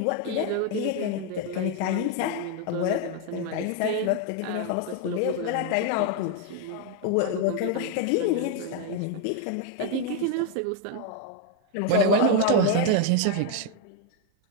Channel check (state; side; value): different; both; correlation 0.01